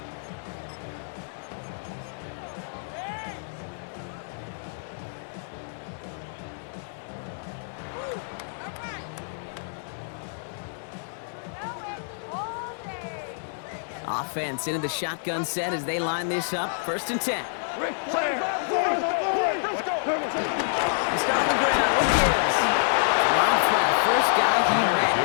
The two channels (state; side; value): silent; right; 59 dB below the other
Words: Offense into the shotgun set as they line this up. First and 10. Rick Flair! He's got on the ground. What gives? Rob for the first guy he met.